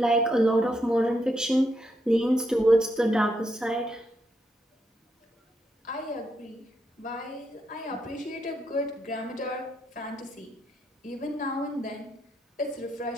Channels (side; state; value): both; normal; correlation 0.79